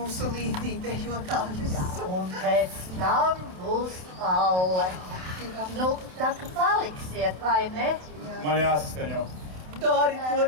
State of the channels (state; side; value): late; left; 27 ms